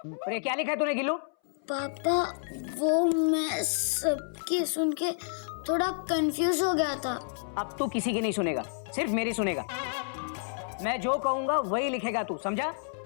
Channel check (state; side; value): silent; right; 58 dB below the other